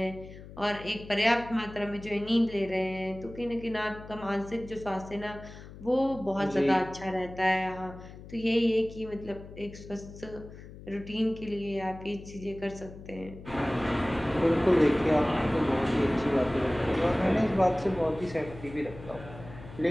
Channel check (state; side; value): noise; left; hum, 16 dB below the sound